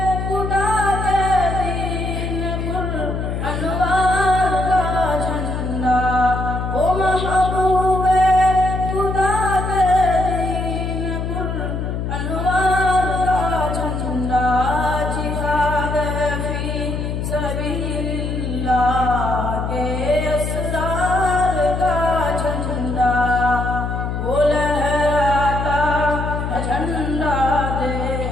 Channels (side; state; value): left; noise; hum, 3 dB below the sound